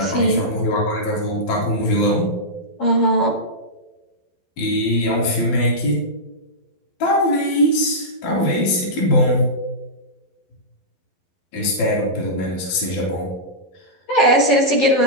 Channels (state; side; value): late; right; 12 ms